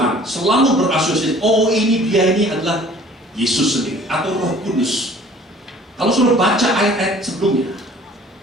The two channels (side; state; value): both; normal; correlation 0.51